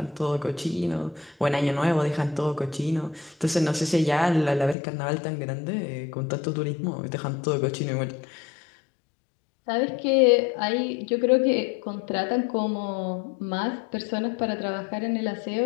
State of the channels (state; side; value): drops out; right; at 4.8 s